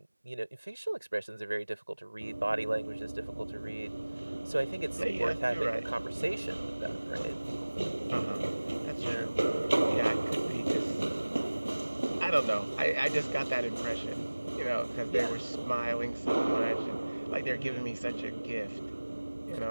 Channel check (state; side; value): inverted; both; correlation -1.00